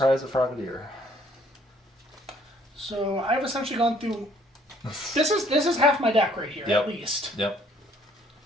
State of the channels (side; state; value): both; normal; correlation 0.62